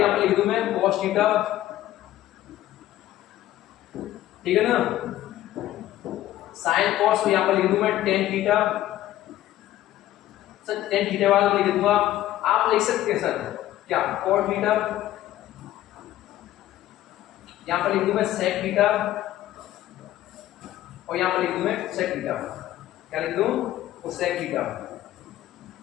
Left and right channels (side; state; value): right; quieter; 14.0 dB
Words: यहाँ पर लिख दूं मैं कॉस थीटा, ठीक है ना, साइन कॉस, यहाँ पर लिख दूं मैं tan theta, sir tan theta वाला लिख दूंगा। आप लिख सकते हैं सर क्या, कॉट थीटा, यहां पर लिख दूं मैं सेक थीटा, और यहां पर लिख दूं मैं सेक थीटा, क्या लिख दूं, वो सेक थीटा,